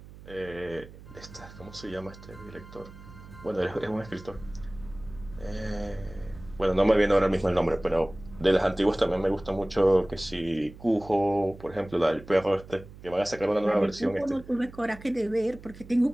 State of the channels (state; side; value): noise; right; hum, 18 dB below the sound